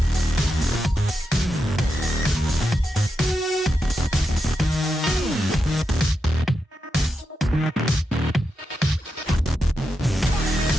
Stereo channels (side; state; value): both; normal; correlation 0.87